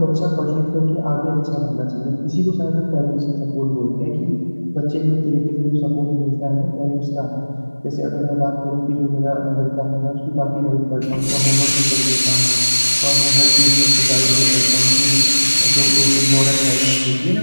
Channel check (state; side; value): inverted; both; correlation -1.00